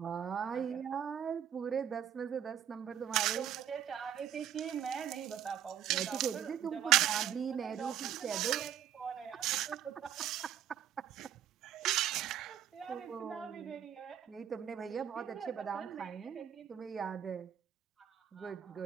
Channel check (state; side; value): quieter; left; 9.8 dB